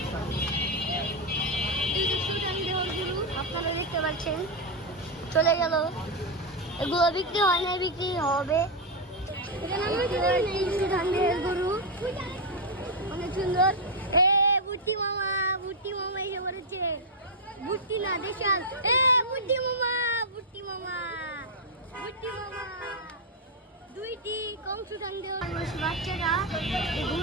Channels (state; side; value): normal; both; correlation 0.01